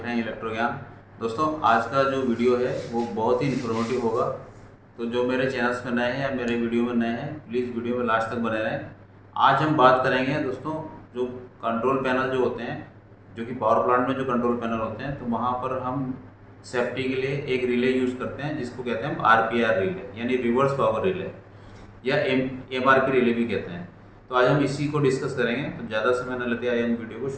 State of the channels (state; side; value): identical; both; correlation 1.00